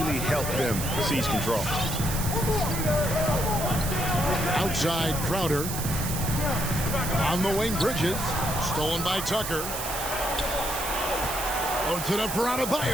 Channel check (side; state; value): right; noise; hiss, 5 dB below the sound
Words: helped them seize control. Outside Crowder. On the wing, Bridges. Stolen by Tucker. Puts it up for